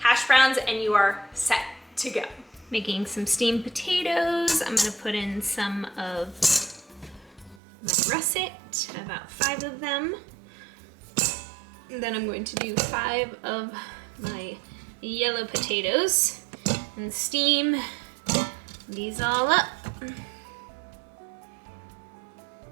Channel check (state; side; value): drops out; left; at 7.6 s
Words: browns, and you are set to go. Making some steamed potatoes. I'm gonna put in some of my russet, about 5 of them. And then I'm going to do 5 of my yellow potatoes and steam these all up.